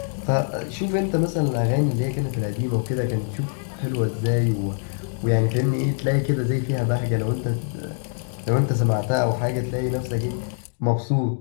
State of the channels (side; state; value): right; silent; digital silence